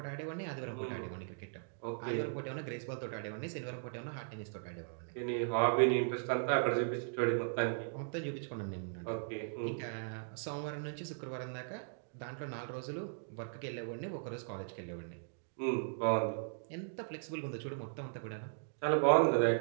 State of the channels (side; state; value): left; silent; digital silence